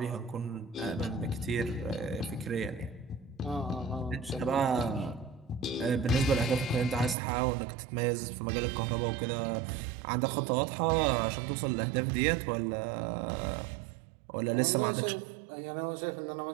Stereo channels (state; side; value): drops out; left; at 7.2 s